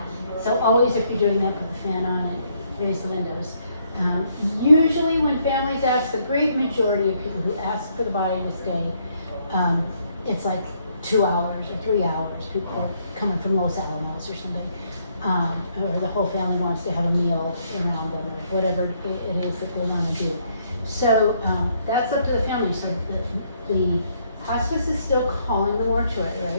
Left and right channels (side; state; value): both; inverted; correlation -0.71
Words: So always if you're doing that, put the fan on and raise the windows. Usually when families ask, the great majority of people who ask for the body to stay, it's like 2 hours or 3 hours. People are coming from Los Alamos or something. Or the whole family wants to have a meal around them, or whatever it is that they want to do. So that's up to the family. So the hospice is still calling the mortuary,